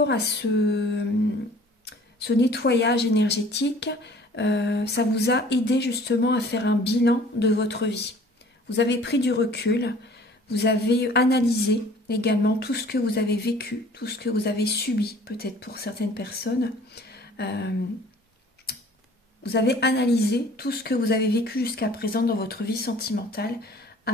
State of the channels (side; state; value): both; normal; correlation 0.51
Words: à ce nettoyage énergétique, ça vous a aidé justement à faire un bilan de votre vie. Vous avez pris du recul, vous avez analysé également tout ce que vous avez vécu, tout ce que vous avez subi, peut-être pour certaines personnes. Vous avez analysé tout ce que vous avez vécu jusqu'à présent dans votre vie sentimentale